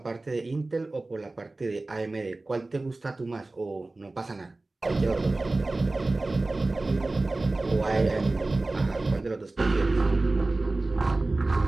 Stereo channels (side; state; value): left; quieter; 3.1 dB